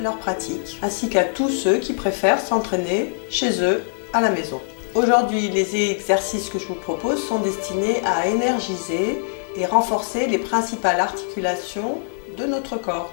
pratique, ainsi qu'à tous ceux qui préfèrent s'entraîner chez eux à la maison. Aujourd'hui, les exercices que je vous propose sont destinés à énergiser et renforcer les principales articulations de notre corps,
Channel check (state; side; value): silent; right; digital silence